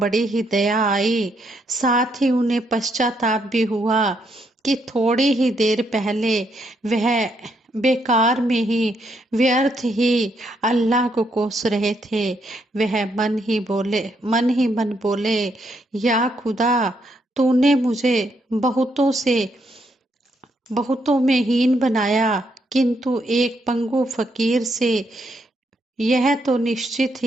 ही दया आई, साथ ही उन्हें पश्चाताप भी हुआ कि थोड़ी ही देर पहले वह बेकार में ही, व्यर्थ ही अल्लाह को कोस रहे थे। वह मन ही मन बोले, या खुदा, तूने मुझे बहुतों में हीन बनाया, किंतु एक पंगु फकीर से यह तो निश्चित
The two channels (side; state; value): both; normal; correlation 0.76